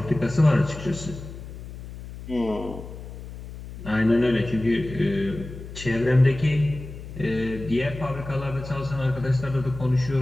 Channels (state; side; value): noise; left; hum, 12 dB below the sound